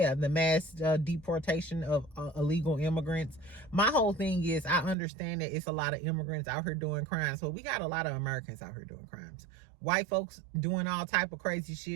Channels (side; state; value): left; drops out; at 5.0 s